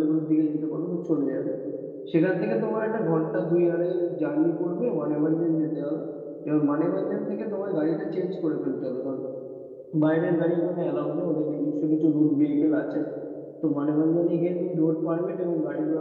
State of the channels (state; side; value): identical; both; correlation 1.00